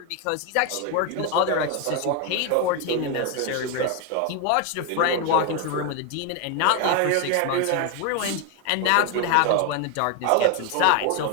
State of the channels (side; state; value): both; different; correlation 0.01